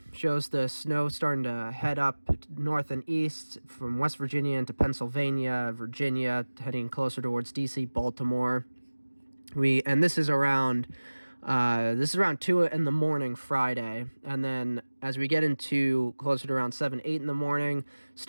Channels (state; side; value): inverted; both; correlation -1.00